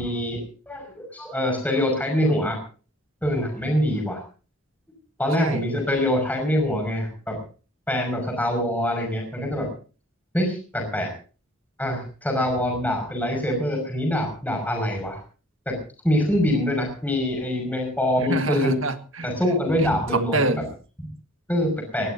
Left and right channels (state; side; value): normal; both; correlation 0.53